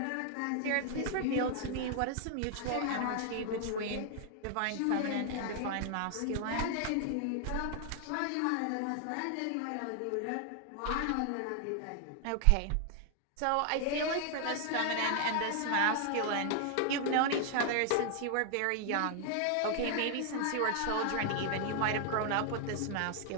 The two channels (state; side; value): different; both; correlation 0.00